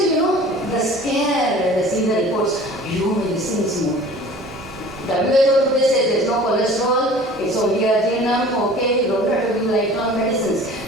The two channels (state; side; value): normal; both; correlation 0.45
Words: the scare when they see the reports, medicine is more. WHO today says there's no cholesterol, it's only arginine, okay, you don't have to give lifelong medicines.